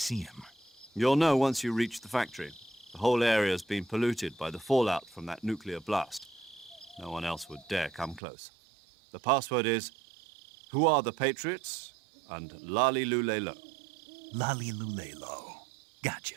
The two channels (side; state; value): left; drops out; at 8.2 s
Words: him? You'll know once you reach the factory. The whole area's been polluted by the fallout from that nuclear blast. No one else would dare come close. The password is, "Who are the Patriots?" and Lali Lule Lo. Lali Lule Lo.